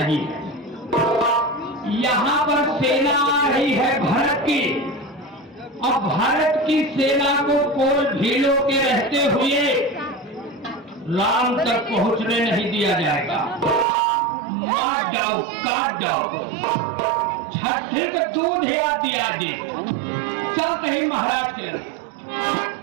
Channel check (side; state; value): left; drops out; at 13.9 s